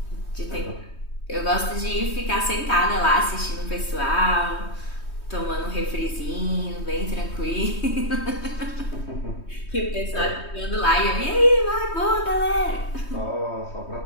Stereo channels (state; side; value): late; right; 3.2 ms